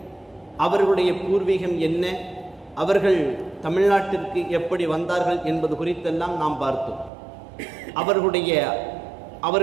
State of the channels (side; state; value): left; drops out; at 7.1 s